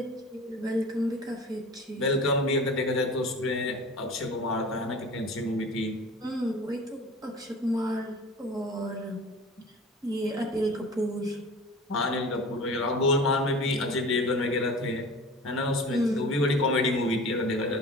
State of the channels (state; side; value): normal; both; correlation 0.39